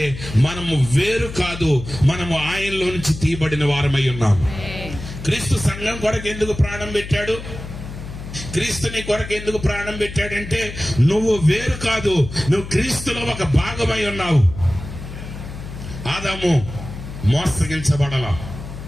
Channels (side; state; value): left; noise; hum, 11 dB below the sound